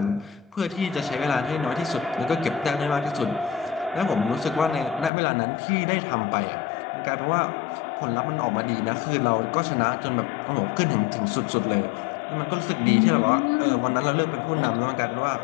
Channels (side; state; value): right; drops out; at 5.1 s